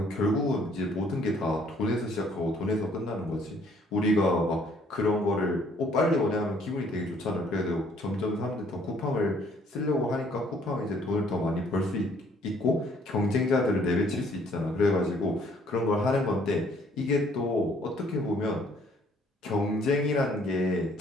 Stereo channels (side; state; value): both; normal; correlation 0.62